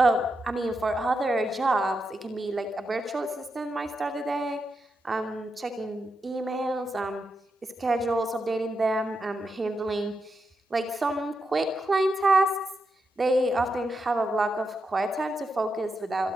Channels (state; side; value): normal; both; correlation 0.85